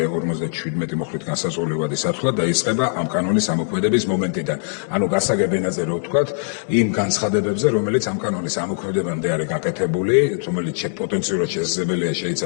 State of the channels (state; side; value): silent; right; digital silence